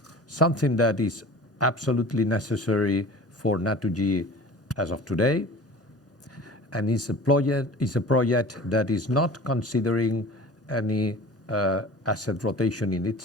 something that is absolutely necessary for NATURGY as of today. And it's a project that is not considering any asset rotation in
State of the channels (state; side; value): normal; both; correlation 0.40